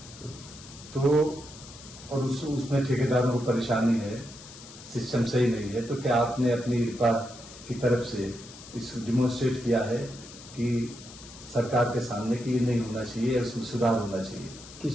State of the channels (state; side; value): noise; left; hiss, 17 dB below the sound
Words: तो और उसमें ठेकेदारों को परेशानी है, सिस्टम सही नहीं है, तो क्या आपने अपनी रिपा की तरफ से इस डिमोन्स्ट्रेट किया है कि सरकार के सामने कि ये नहीं होना चाहिए, इसमें सुधार होना चाहिए?